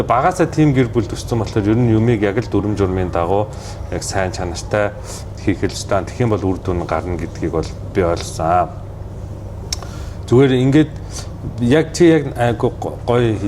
Багасаа тим гэр бүл төссөн болохоор ер нь юмыг яг л дүрм журмын дагуу яг сайн чанартай хийх хэлжтэй. Тэгэх юм бол үр дүн гарна гэдгийг бол би ойлгосон. Зүгээр ингээд яг чи яг гоё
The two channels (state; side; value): identical; both; correlation 1.00